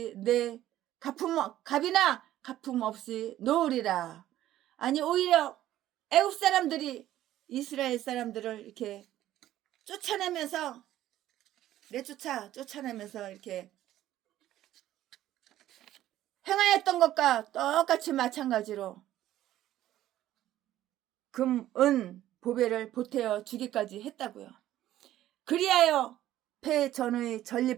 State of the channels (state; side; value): quieter; left; 13.4 dB